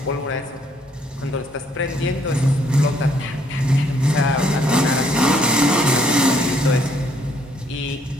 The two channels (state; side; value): normal; both; correlation 0.67